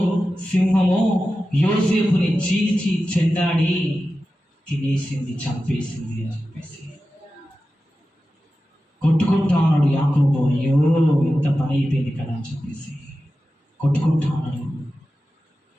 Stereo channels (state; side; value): normal; both; correlation 0.93